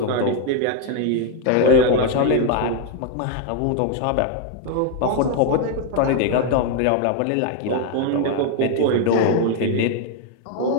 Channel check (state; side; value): different; both; correlation 0.01